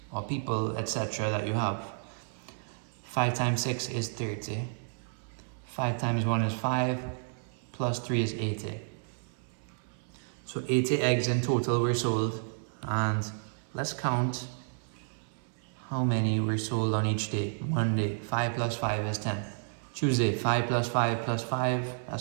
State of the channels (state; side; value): silent; left; 56 dB below the other